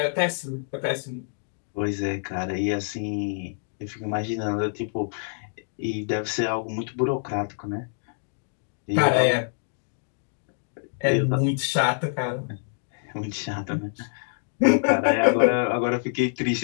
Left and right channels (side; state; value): right; silent; digital silence